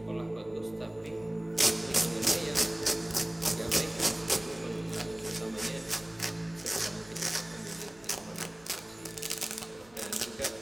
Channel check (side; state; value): right; noise; rumble, 27 dB below the sound